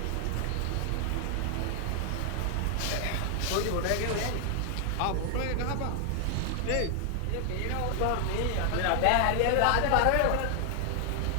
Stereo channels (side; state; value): both; different; correlation 0.00